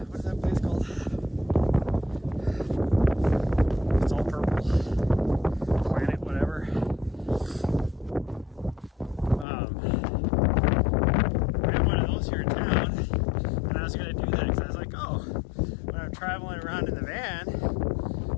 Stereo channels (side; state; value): right; drops out; at 9.5 s